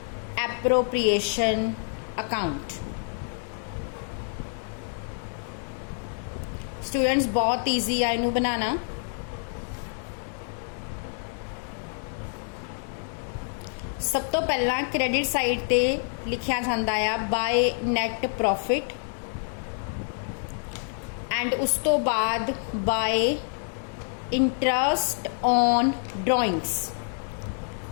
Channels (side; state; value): right; silent; 60 dB below the other